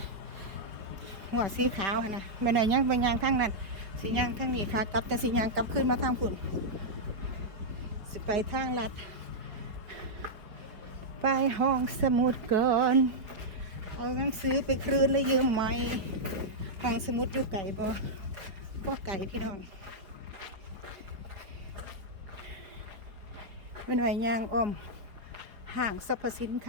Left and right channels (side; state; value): left; late; 4.8 ms